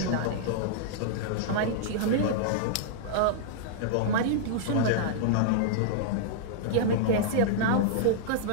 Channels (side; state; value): both; different; correlation -0.02